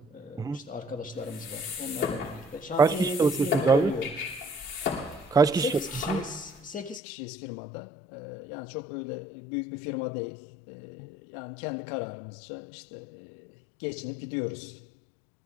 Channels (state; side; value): drops out; right; at 7.0 s